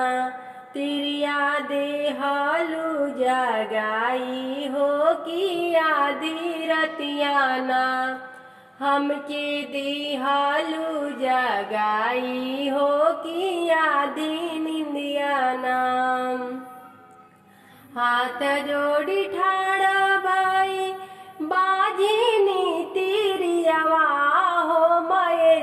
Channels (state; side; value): identical; both; correlation 1.00